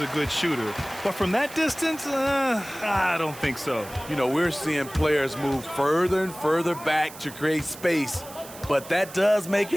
a good shooter, but from that distance, I don't think so. You know, we're seeing players move further and further back to create space, but that does make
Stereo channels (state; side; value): noise; right; hiss, 16 dB below the sound